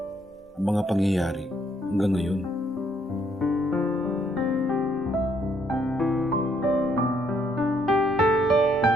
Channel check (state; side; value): normal; both; correlation 0.70